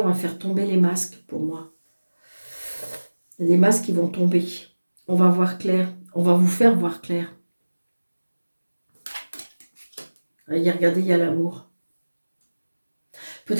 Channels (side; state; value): both; inverted; correlation -1.00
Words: va faire tomber les masques pour moi. Il y a des masques qui vont tomber. On va voir clair. On va vous faire voir clair. Regardez, il y a l'amour.